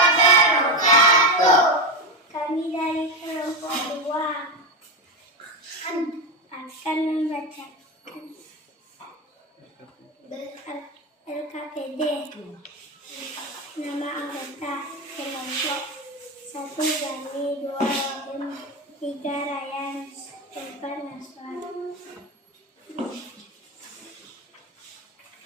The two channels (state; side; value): normal; both; correlation 0.13